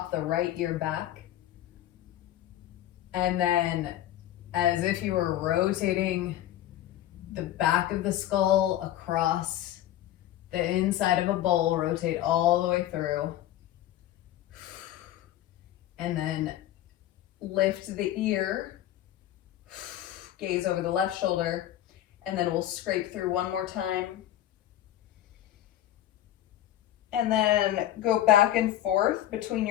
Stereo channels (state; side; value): quieter; right; 12.8 dB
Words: the right ear back, and then as if you were rotating the back of the skull across the inside of a bowl, rotate all the way through, and then lift the ear, gaze over the left shoulder, and then we'll scrape through one more time. And then go back and forth between